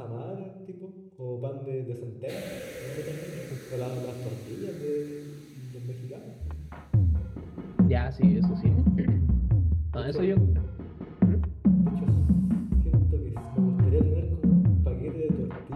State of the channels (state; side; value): identical; both; correlation 1.00